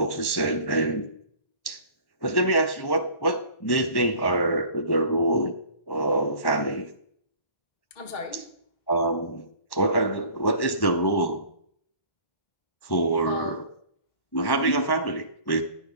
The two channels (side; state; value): right; late; 1.1 ms